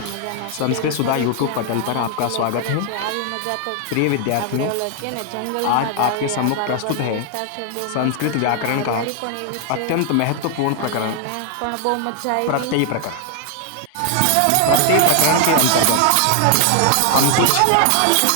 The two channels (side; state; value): both; different; correlation 0.00